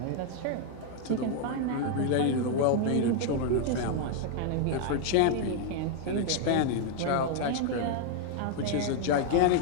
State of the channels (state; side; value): different; both; correlation 0.00